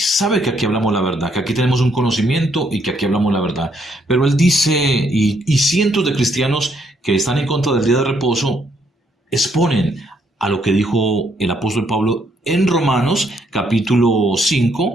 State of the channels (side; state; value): both; normal; correlation 0.72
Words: que aquí hablamos la verdad, que aquí tenemos un conocimiento y que aquí hablamos la verdad. Pero él dice, y cientos de cristianos que están en contra del día de reposo exponen a lo que dijo el apóstol Pablo en Romanos capítulo